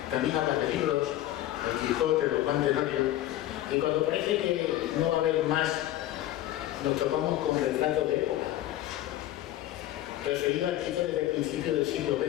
También hablas de libros, el Quijote, los Juan Tenorio, y cuando parece que no va a haber más, nos topamos con retratos de época, referido al Quijote desde el principio del siglo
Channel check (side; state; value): right; quieter; 13.9 dB